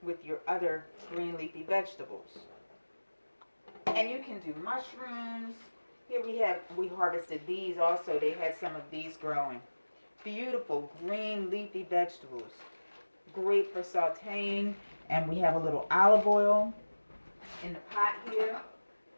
with your other green leafy vegetables. And you can do mushrooms. Here we harvested these also. They had some of these growing. Beautiful green leafy vegetables. great for sauteing. And we have a little olive oil in the pot here.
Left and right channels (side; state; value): both; inverted; correlation -1.00